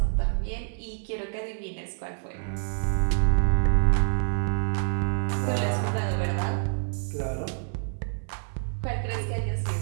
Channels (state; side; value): silent; left; 57 dB below the other